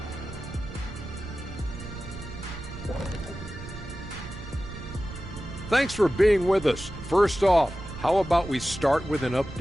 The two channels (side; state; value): right; noise; rumble, 12 dB below the sound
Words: Thanks for being with us. First off, how about we start with an